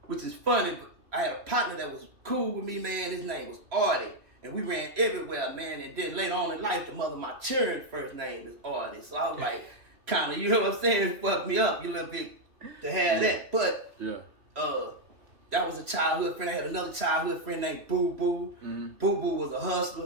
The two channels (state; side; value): late; left; 3.0 ms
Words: But I had a partner that was cool with me, man. His name was Artie. And we ran everywhere, man. And then later on in life, the mother of my children's first name is Artie. So I was like, kind of, what I'm saying? It fucked me up a little bit to have that. But, that was a childhood friend. I had another childhood friend named Boo Boo. Mm-hmm. Boo Boo was a